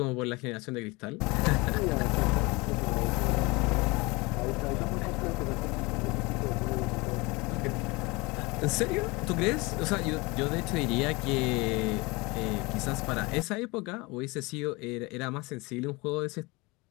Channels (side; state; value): right; quieter; 24.8 dB